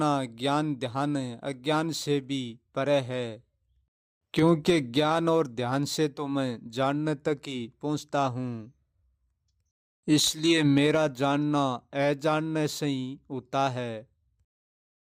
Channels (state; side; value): identical; both; correlation 1.00